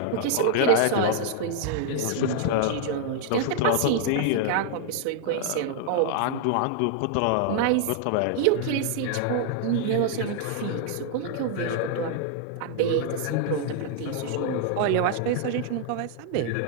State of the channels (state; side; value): different; both; correlation 0.00